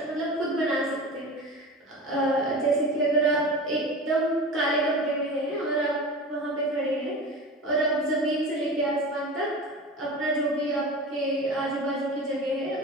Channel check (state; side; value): normal; both; correlation 0.32